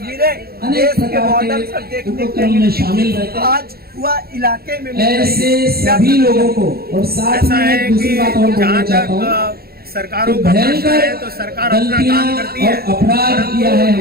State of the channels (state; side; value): late; left; 0.45 ms